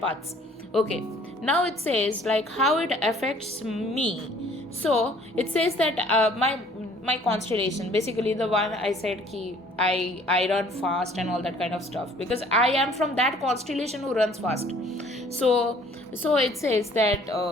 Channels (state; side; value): normal; both; correlation 0.56